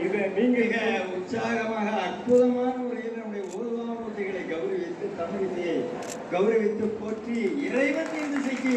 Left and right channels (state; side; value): identical; both; correlation 1.00